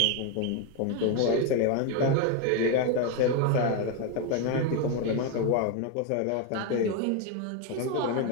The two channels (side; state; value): both; different; correlation 0.02